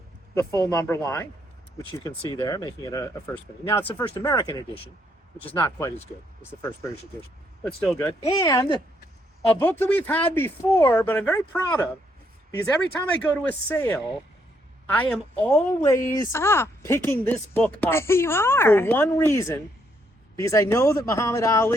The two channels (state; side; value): normal; both; correlation 0.73